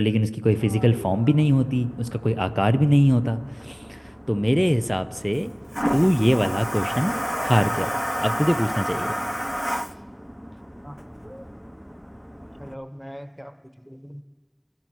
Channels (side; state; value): both; identical; correlation 1.00